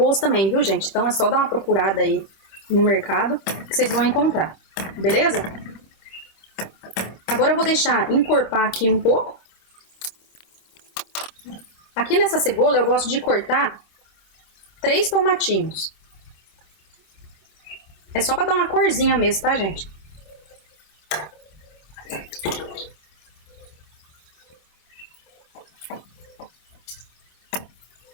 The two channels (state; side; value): late; right; 25 ms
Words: também, viu, gente? Então é só dar uma procurada aí no mercado que vocês vão encontrar. Beleza? Agora eu vou deixar encorpar aqui um pouco. Aqui nessa cebola eu gosto de cortar 3 tomatinhos. É só pra dar uma corzinha mesmo, tá, gente?